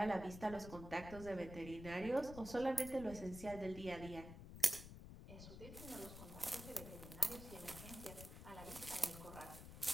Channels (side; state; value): left; noise; rumble, 11 dB below the sound